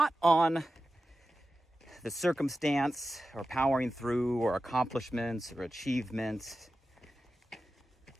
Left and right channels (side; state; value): both; normal; correlation 0.93